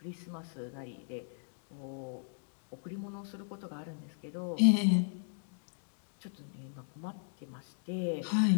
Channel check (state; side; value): silent; right; digital silence